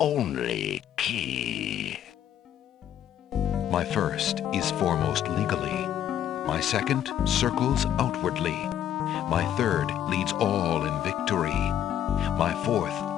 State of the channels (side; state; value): right; quieter; 10.5 dB